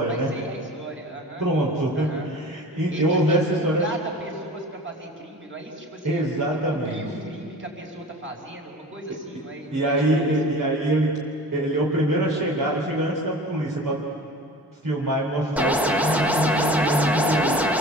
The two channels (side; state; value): both; normal; correlation 0.39